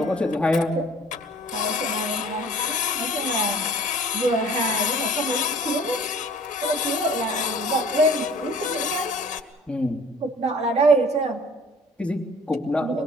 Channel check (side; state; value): both; normal; correlation 0.50